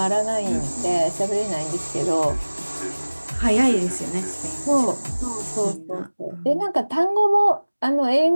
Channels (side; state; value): both; inverted; correlation -1.00